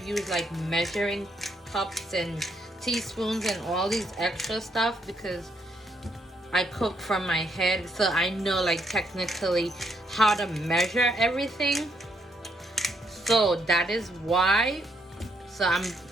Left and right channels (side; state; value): both; normal; correlation 0.74